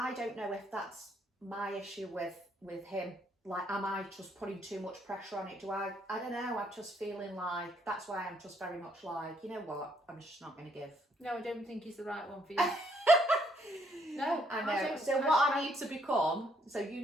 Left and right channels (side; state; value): both; normal; correlation 0.69